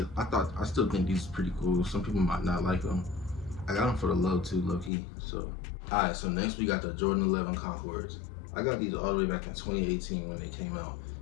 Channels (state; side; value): drops out; right; at 4.9 s